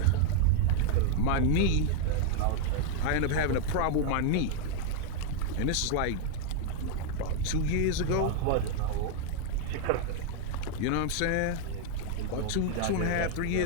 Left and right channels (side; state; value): both; different; correlation 0.00